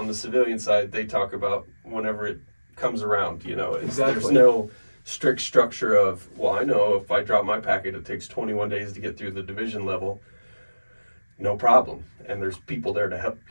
the civilian side, they talk about whenever it comes around. Exactly. There's no strict structure of, well, I know if I drop my packet, it takes 21 days to get through the division level. No problem. And there's people there to help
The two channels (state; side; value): inverted; both; correlation -1.00